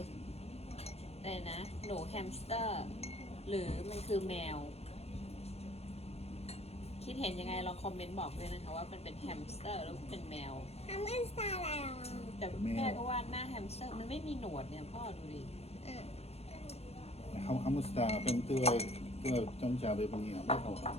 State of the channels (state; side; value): late; right; 0.30 ms